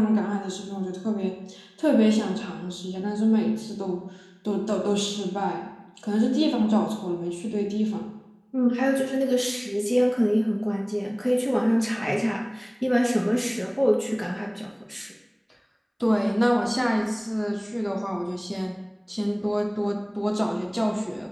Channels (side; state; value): both; identical; correlation 1.00